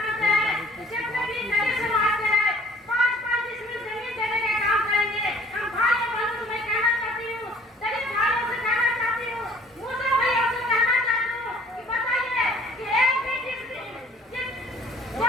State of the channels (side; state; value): both; normal; correlation 0.55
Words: हैं, जितने भी नए समाज के हैं 5-5 डिसमिल जमीन देने का काम करेंगे। हम भाई बहनों से मैं कहना चाहती हूँ, दलित भाइयों से कहना चाहती हूँ, मुस्लिम भाइयों से कहना चाहती हूँ कि बताइए कि एक भी